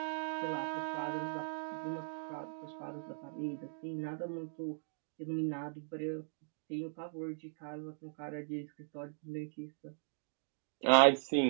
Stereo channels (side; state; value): left; silent; digital silence